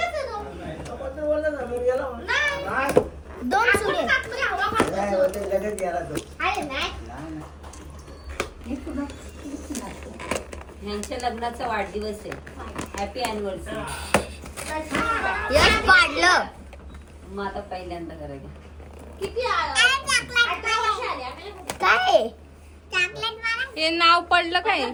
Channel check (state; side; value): identical; both; correlation 1.00